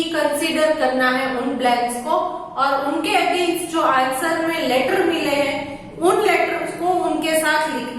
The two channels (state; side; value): identical; both; correlation 1.00